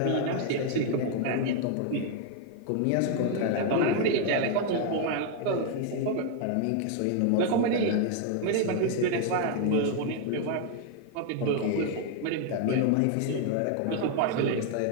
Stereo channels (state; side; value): different; both; correlation 0.00